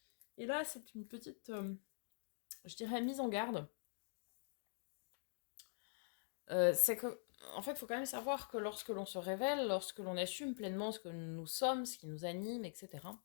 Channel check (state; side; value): silent; right; digital silence